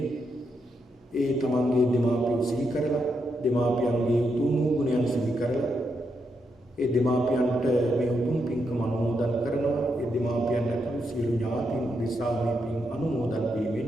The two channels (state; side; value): normal; both; correlation 0.81